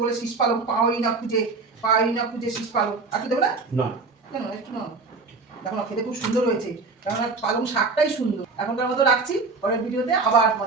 বলে শীষ পালং পাওয়াই না খুঁজে শীষ পালং, আর কি দেবো না? না কেন একটু না, দেখো না খেতে খুব সুন্দর হয়েছে, কারণ পালং শাকটাই সুন্দর। এখনকার মতো রাখছি, পরের ভিডিওতে আবার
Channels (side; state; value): left; quieter; 4.1 dB